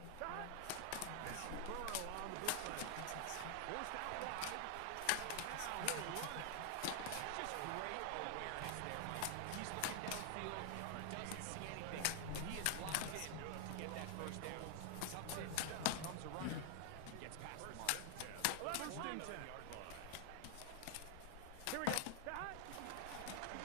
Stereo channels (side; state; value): both; different; correlation 0.00